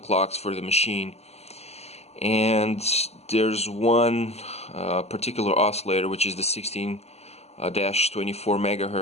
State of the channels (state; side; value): late; right; 0.30 ms